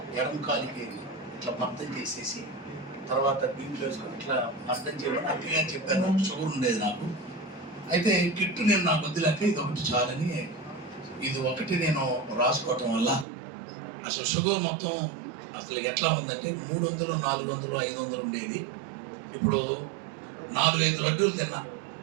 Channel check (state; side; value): drops out; left; at 13.2 s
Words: ఎడమ కాలికి ఇట్లా మర్దం చేసేసి తర్వాత దీంట్లో వేసుకొని ఇట్లా మర్దం చేయమని అక్కగా చెప్పాను. షుగర్ ఉండేది నాకు. అయితే కిట్టు నేను నాకు వద్దులేక ఇది ఒకటి చాలని ఇది ఒకటి నేను రాసుకోవటం వల్ల అసలు షుగర్ మొత్తం అసలు ఎట్లా ఉందంటే 300, 400, 500 ఉండేది. ఇప్పుడు 4-5 లడ్డూలు తిన్నా.